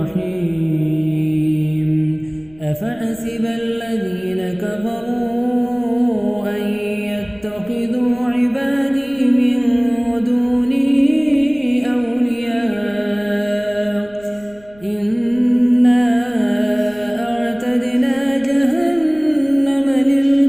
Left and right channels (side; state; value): left; noise; rumble, 27 dB below the sound